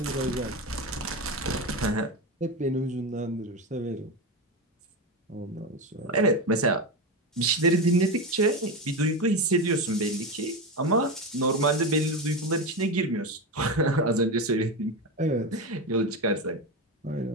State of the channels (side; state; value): both; normal; correlation 0.17